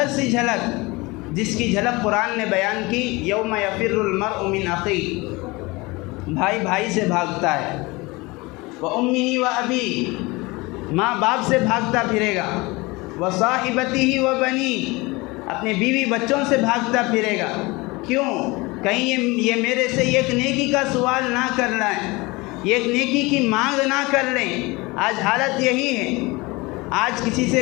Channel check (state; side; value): quieter; right; 23.7 dB